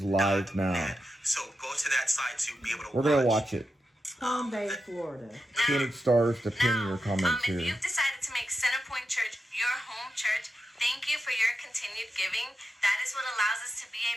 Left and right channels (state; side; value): normal; both; correlation 0.88